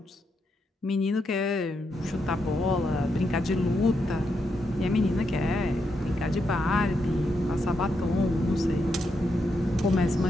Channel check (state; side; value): normal; both; correlation 0.82